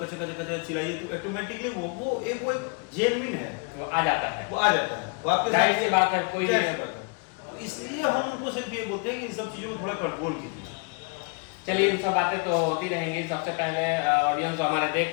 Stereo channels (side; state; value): right; quieter; 34.5 dB